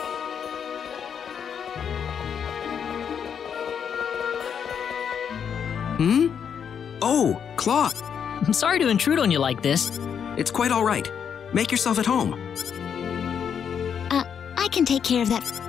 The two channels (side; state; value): right; quieter; 7.6 dB